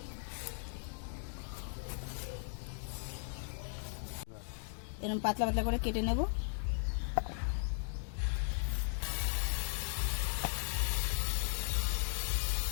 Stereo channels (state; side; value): silent; right; digital silence